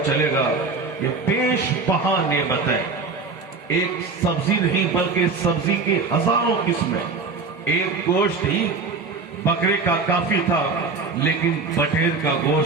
چلے گا یہ بیش بہا نعمتیں، ایک سبزی نہیں بلکہ سبزی کی ہزاروں قسمیں، ایک گوشت ہی بکرے کا کافی تھا، لیکن بٹیر کا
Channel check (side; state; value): left; quieter; 4.3 dB